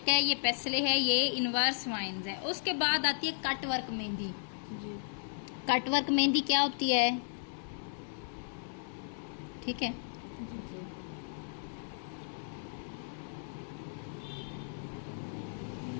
है, ये पेसले है, ये इनवर्स वाइन्स है। उसके बाद आती है कट वर्क मेहंदी। जी। कट वर्क मेहंदी क्या होती है, ठीक है।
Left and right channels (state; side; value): silent; right; 55 dB below the other